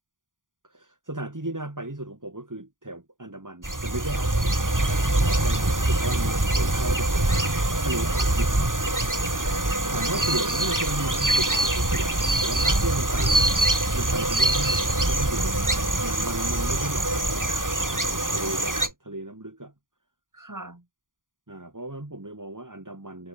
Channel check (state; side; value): late; left; 0.89 ms